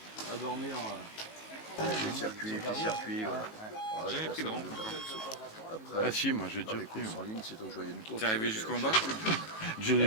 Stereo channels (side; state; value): right; late; 18 ms